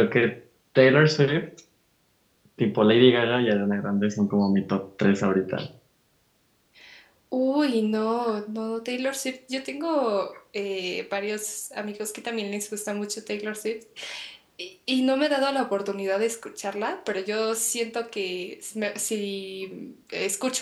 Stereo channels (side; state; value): both; identical; correlation 1.00